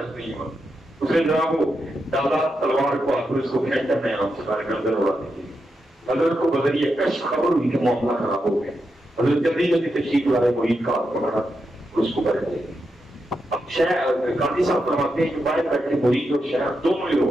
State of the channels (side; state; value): both; normal; correlation 0.86